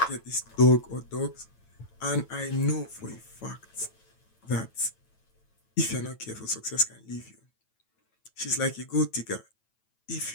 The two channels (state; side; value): late; right; 9.0 ms